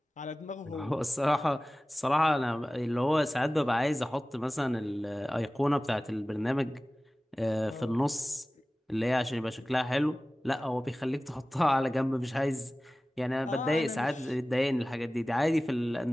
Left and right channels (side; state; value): both; normal; correlation 0.97